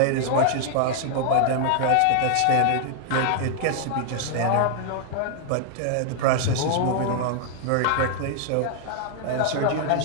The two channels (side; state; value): both; different; correlation 0.00